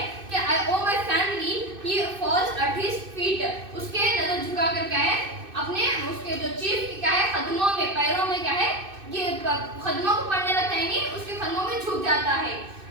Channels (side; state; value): left; late; 2.6 ms